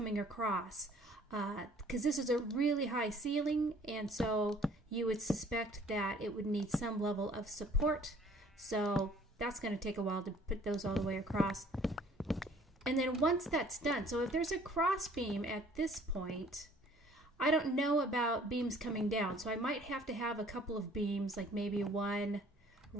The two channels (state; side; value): normal; both; correlation 0.56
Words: across, because this is a really high ceiling, and so you would suspect that it would need some level of support. So that's going to take a while to put those all the way across. And then once that's done, so if there's a cross beam at this point, I don't know about beams coming down, so I might have to have a couple of beams, like maybe one